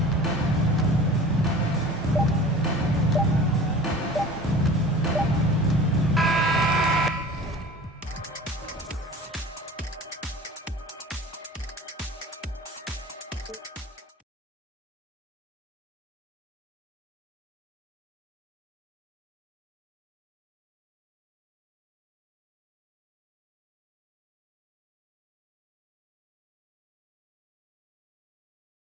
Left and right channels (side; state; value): both; normal; correlation 0.41